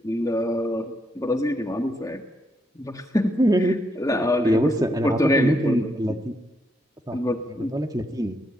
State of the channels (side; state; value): both; normal; correlation 0.78